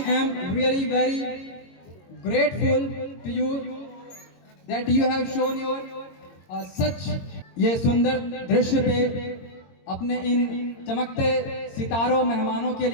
am really very grateful to you that you have shown your such ये सुंदर दृश्य पे अपने इन चमकते सितारों मेहमानों के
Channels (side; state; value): right; late; 22 ms